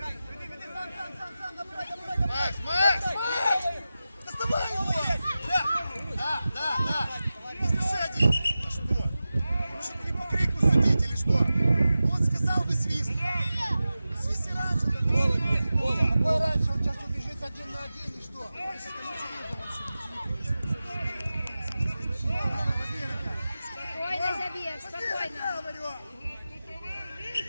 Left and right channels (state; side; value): inverted; both; correlation -0.94